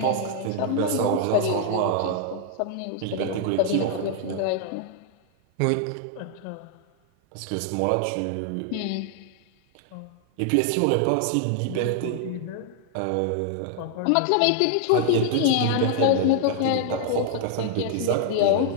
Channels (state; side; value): different; both; correlation 0.00